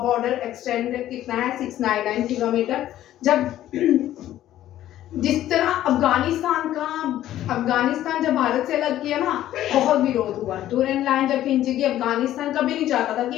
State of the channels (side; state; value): right; quieter; 13.0 dB